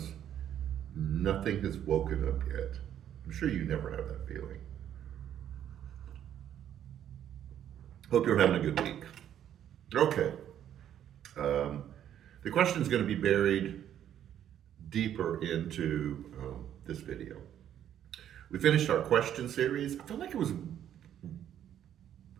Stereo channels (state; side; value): quieter; left; 10.4 dB